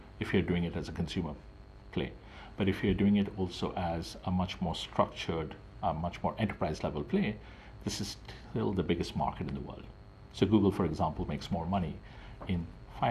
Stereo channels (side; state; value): both; identical; correlation 1.00